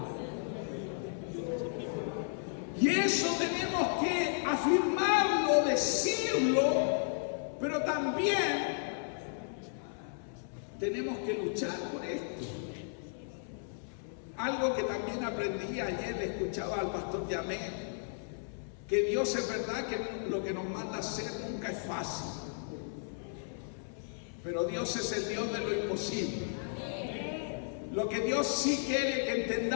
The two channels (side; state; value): right; silent; 55 dB below the other